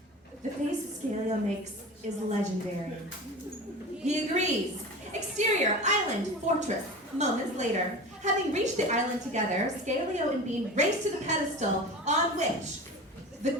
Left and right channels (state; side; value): normal; both; correlation 0.33